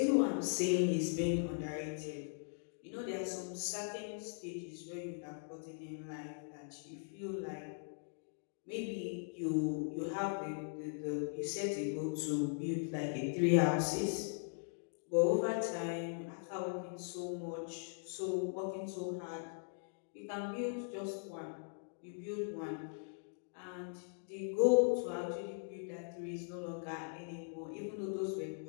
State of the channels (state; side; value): silent; right; digital silence